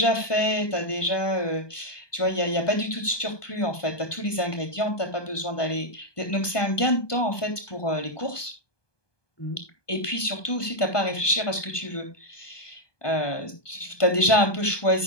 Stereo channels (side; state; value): right; late; 1.2 ms